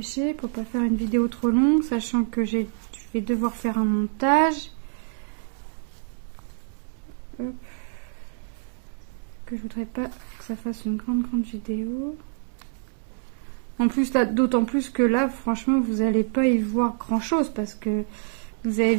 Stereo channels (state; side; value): silent; left; digital silence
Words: pour pas faire une vidéo trop longue, sachant que je vais devoir faire un montage. Hop. Que je voudrais pas que ça fasse une grande vidéo. En plus là, d'autant plus que là, franchement, vous allez pas y voir grand chose parce que vous avez